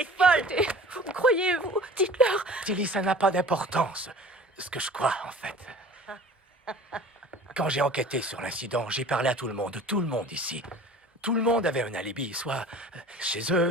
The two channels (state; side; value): normal; both; correlation 0.44